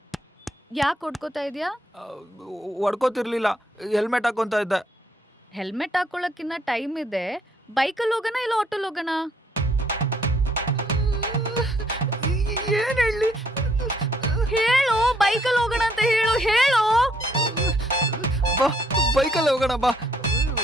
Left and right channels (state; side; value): normal; both; correlation 0.68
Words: ಯಾಕೆ ಹೊಡ್ಕೋತಾ ಇದೆಯಾ? ಹೊಡ್ಕೋತಿರ್ಲಿಲ್ಲ, ಹೆಲ್ಮೆಟ್ ಹಾಕೊಂತ ಇದ್ದೆ. ಹೆಲ್ಮೆಟ್ ಹಾಕೊಳ್ಳೋಕ್ಕಿನ್ನ ಟೈಮ್ ಇದೆ. ಬೈಕಲ್ಲಿ ಹೋಗೋಣ ಇಲ್ಲ ಆಟೋಲ್ ಹೋಗೋಣ? ಏನ್ ಹೇಳಿ? ಹೇಳು, ಬೈಕಲ್ಲಿ ಹೋಗೋಣ ಅಂತ ಹೇಳು. ಹೇಳು. ಬಾ, ಬೈಕಲ್ಲಿ ಹೋಗೋಣ. ಬಾ